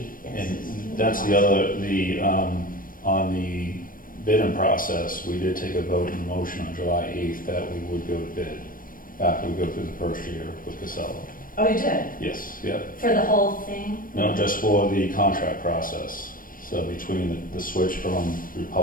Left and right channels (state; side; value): late; right; 0.40 ms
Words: yes. And that's the other, on the bidding process, we did take a vote and motion on July 8th that we would go to bid after we go through the first year with Casella. Oh, you did? Yes, yep. For the whole thing? No, just for the contract process. So between the switch from